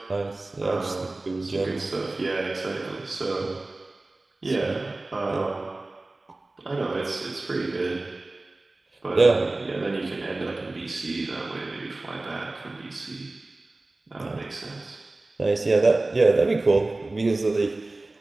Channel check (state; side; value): quieter; left; 3.0 dB